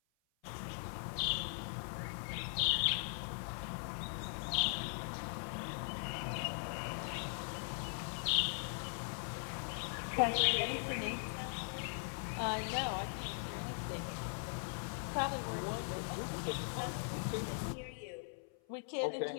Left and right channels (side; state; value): right; silent; 51 dB below the other